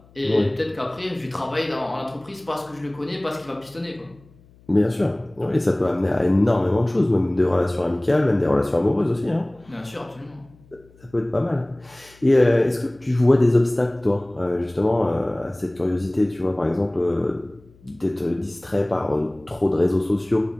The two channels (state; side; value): noise; left; hum, 28 dB below the sound